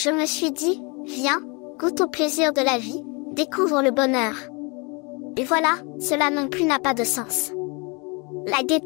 me suis dit, viens, goûte au plaisir de la vie, découvre le bonheur. Et voilà, cela non plus n'a pas de sens. La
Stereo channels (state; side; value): quieter; right; 30.5 dB